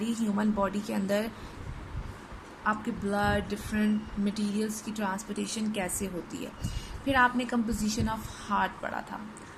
human body के अंदर आपके ब्लड डिफरेंट मटेरियल्स की ट्रांसपोर्टेशन कैसे होती है. फिर आपने कंपोजिशन ऑफ हार्ट पढ़ा था.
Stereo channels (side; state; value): both; identical; correlation 1.00